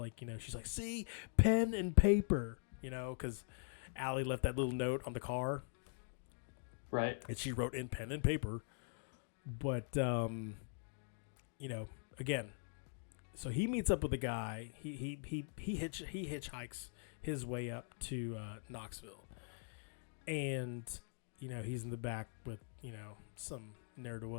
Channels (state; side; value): silent; right; digital silence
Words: she's like, see, pen and paper, because Allie left that little note on the car. Right. And she wrote in pen and paper. But, again, so he meets up with a guy. He hitchhikes his way up to Knoxville. And, he's in the back with, some